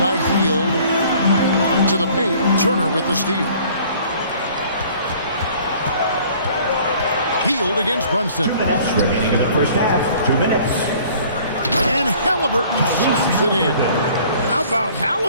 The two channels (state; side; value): inverted; both; correlation -0.53